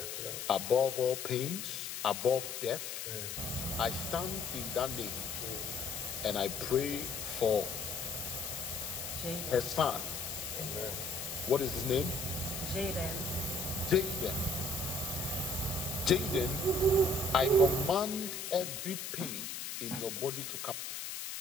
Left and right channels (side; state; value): left; noise; hiss, 6 dB below the sound